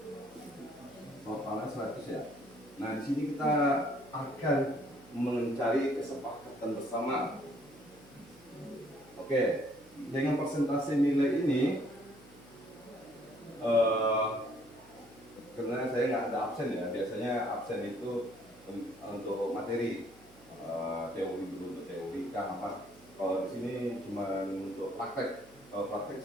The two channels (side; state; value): right; noise; hum, 26 dB below the sound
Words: Totalnya 100 ya. Nah, di sini kita akan mencari kesepakatan bersama. Oke, dengan persentase nilai ini, karena saya nggak ada absen ya, biasanya absen itu untuk materi, teori dulu untuk teori kan apa. Kalau di sini cuma untuk praktek. Kalau praktek